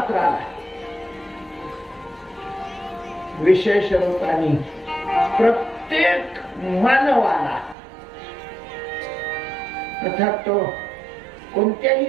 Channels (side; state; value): left; drops out; at 7.8 s